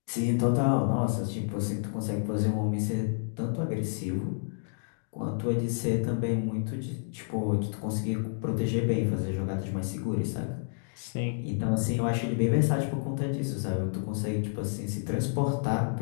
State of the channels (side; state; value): right; silent; digital silence